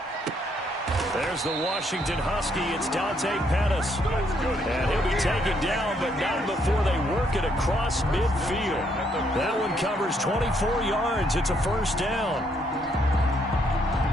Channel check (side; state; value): both; normal; correlation 0.72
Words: There's the Washington Husky. It's Dante Pettis. And he'll be taken down, but not before they work it across midfield. That one covers 24 yards. It's a first down.